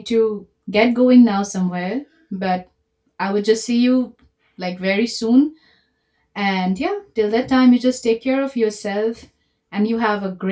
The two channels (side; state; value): both; identical; correlation 1.00